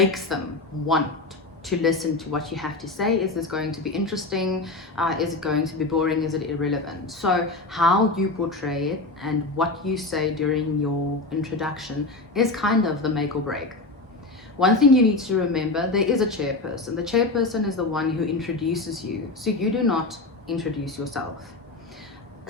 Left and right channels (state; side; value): quieter; right; 3.2 dB